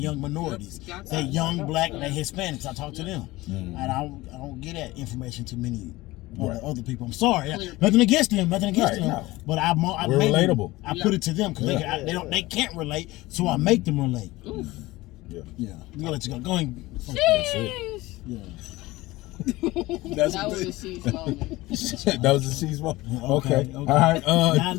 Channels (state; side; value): quieter; right; 19.4 dB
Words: minorities. They young, black, they Hispanics. I talk to them. And I don't get that information to many other people. I'm sorry. Nothing against them. Nothing against them. No. But we're relatable. I put it to them because they can't relate, so I make them relate. Oof. Yeah. I'm gonna let you go. Go ahead. Yeah. That was a sheesh moment. That was a sheesh moment. Okay. All right. Now